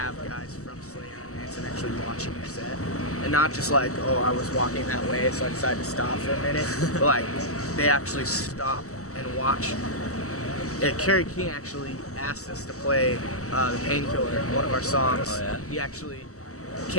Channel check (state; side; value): late; right; 0.65 ms